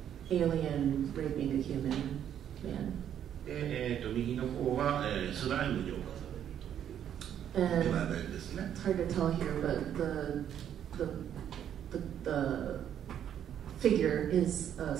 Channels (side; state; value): left; quieter; 9.7 dB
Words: alien raping a human man. 右の方は、スライムに侵される。And it's hard to tell here, but the figure is a